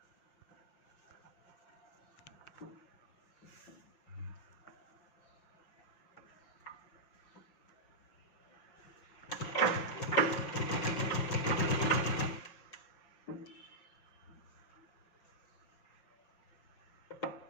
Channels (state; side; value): late; right; 5.7 ms